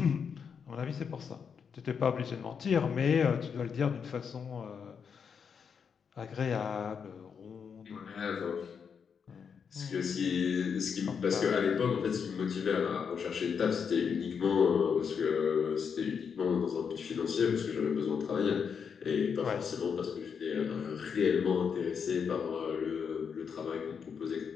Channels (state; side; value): quieter; right; 6.6 dB